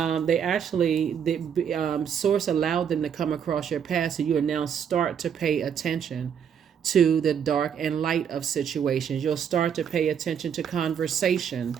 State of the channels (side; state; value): left; quieter; 7.9 dB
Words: source allowed them to come across your path, so you will now start to pay attention to the dark and light of situations. You'll start to pay attention to conversation.